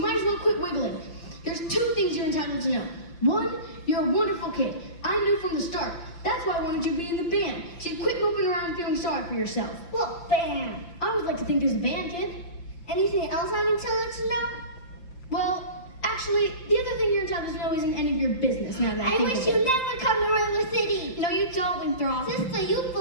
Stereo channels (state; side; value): late; right; 5.8 ms